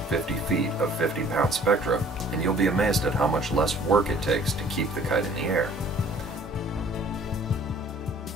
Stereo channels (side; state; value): both; normal; correlation 0.54